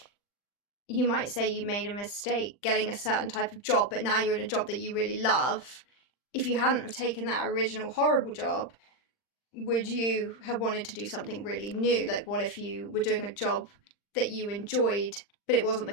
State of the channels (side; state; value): right; late; 40 ms